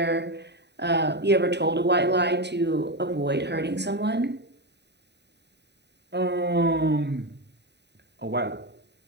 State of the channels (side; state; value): left; late; 0.50 ms